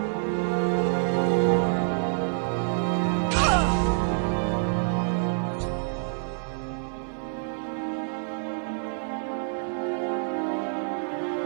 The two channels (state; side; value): silent; left; 60 dB below the other